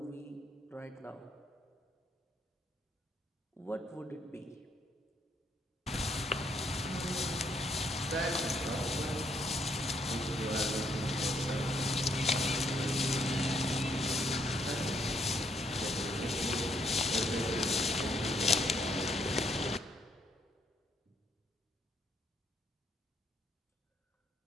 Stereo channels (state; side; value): normal; both; correlation 0.71